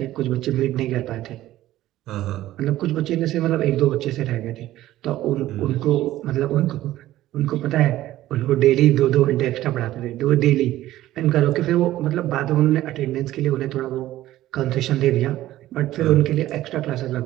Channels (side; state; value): left; quieter; 14.7 dB